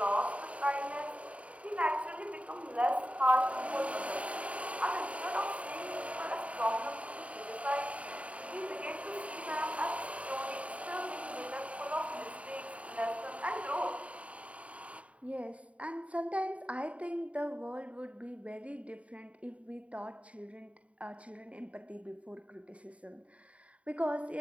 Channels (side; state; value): left; late; 0.065 ms